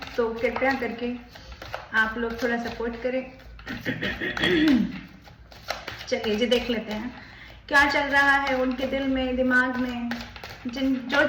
तो कृपया करके आप लोग थोड़ा सपोर्ट करें। चलिए जी देख लेते हैं क्या चल रहा है उनके दिल में, दिमाग में, जो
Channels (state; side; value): identical; both; correlation 1.00